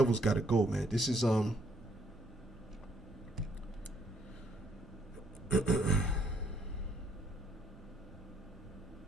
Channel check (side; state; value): both; normal; correlation 0.68